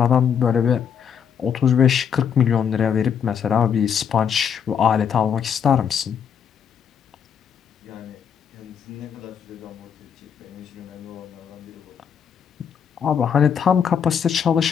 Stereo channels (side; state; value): right; quieter; 7.7 dB